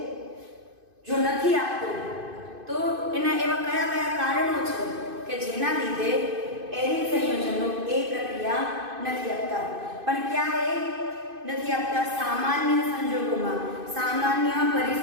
જો નથી આપતો તો એના એવા કયા કયા કારણો છે કે જેના લીધે એરિન સંયોજનો એ પ્રક્રિયા નથી આપતા? પણ ક્યારે નથી આપતા? સામાન્ય સંજોગોમાં, સામાન્ય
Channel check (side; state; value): left; late; 2.5 ms